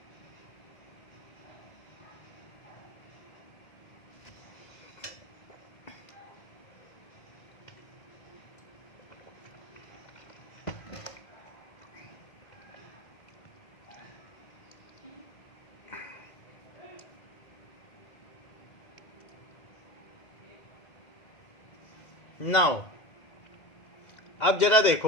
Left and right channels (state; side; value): late; right; 2.1 ms